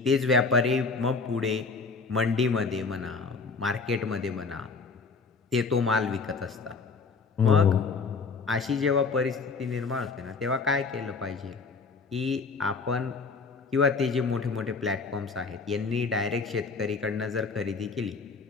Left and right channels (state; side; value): quieter; right; 4.6 dB